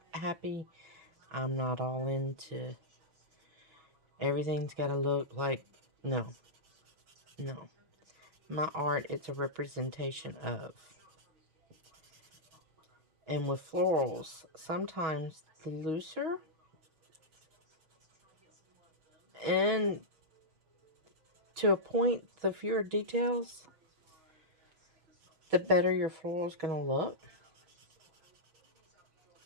happy. I'm not all into everything's got to look like, no. My art, it's a representation of. And with florals, sometimes the looser and to a point, the fewer details, the better your floral is going to look.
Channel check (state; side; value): late; left; 6.3 ms